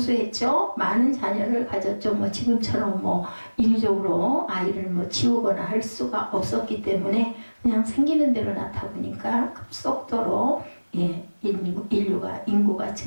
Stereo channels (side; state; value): both; inverted; correlation -1.00